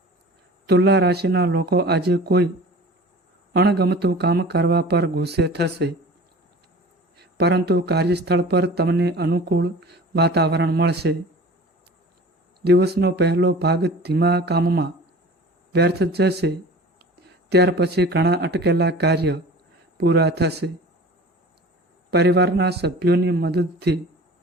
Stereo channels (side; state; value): both; normal; correlation 0.41